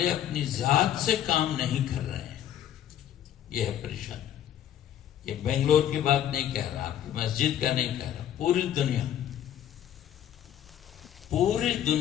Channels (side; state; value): right; quieter; 10.8 dB